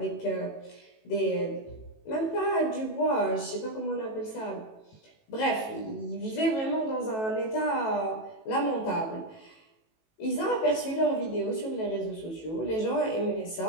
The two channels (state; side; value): late; right; 18 ms